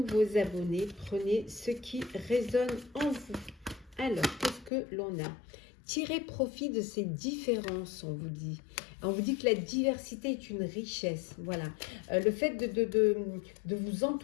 abonnés. Prenez ce qui résonne en vous. Alors, qu'est-ce que l'on a? Tirez profit de ces différences, on vous dit. On vous dit que la diversité est une richesse. Voilà. Le fait de vous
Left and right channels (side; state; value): right; drops out; at 4.7 s